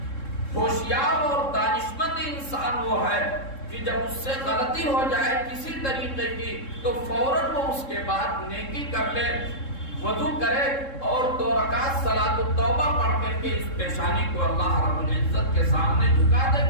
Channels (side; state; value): right; late; 3.7 ms